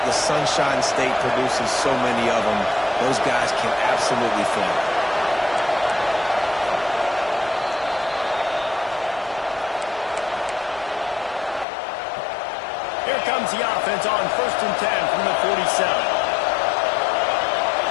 Sunshine State produces so many of them. Those guys can absolutely fly. Here comes the offense on 1st and 10 from the 47.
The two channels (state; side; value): drops out; right; at 11.7 s